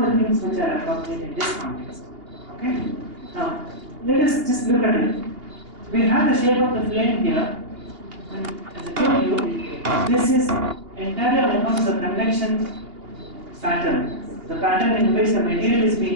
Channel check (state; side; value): late; left; 2.8 ms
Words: things which are appropriate in this context. Okay? Now, let us just look at it. We have the shape of the flame here, and as I told you, this is entirely on account of the convection pattern, the pattern in which the material is